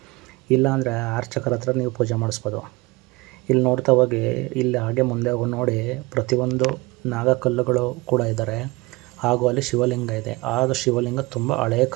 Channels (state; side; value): quieter; left; 23.4 dB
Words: ಇಲ್ಲಾಂದರೆ ಅರ್ಚಕರ ಹತ್ರ ನೀವು ಪೂಜೆ ಮಾಡಿಸ್ಬೋದು. ಇಲ್ಲಿ ನೋಡ್ತಾ ಹೋಗಿ, ಇಲ್ಲಿ ಹಾಗೆ ಮುಂದೆ ಹೋಗಿ ನೋಡಿ, ಪ್ರತಿಯೊಂದು ನಾಗಕಲ್ಲುಗಳು ಕೂಡ ಇದ್ದಾರೆ. ಹಾಗೂ ಅಲ್ಲಿ ಶಿವಲಿಂಗ ಇದೆ. ಆ ಶಿವಲಿಂಗ ತುಂಬ ಹಳೆಯ